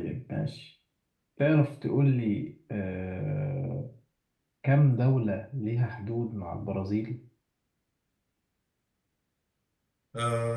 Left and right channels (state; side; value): identical; both; correlation 1.00